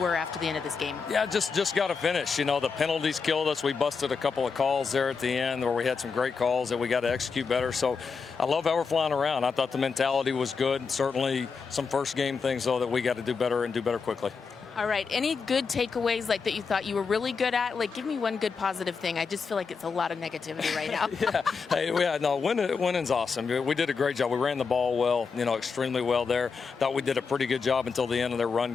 after the end of this game? Yeah, just got to finish. You know, the penalties killed us. We busted a couple of calls there at the end where we had some great calls that we got to execute better. So I love how we're flying around. I thought the mentality was good. Certainly some first game things, though, that we got to do better and do better quickly. All right. Any good takeaways like that you thought you were really good at? Like, give me one good positive thing. I just feel like it's a lot of negativity right now. Winning's awesome. We did a great job. We ran the ball well, you know, extremely well there. Thought we did a pretty good job until the end of their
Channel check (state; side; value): quieter; right; 5.3 dB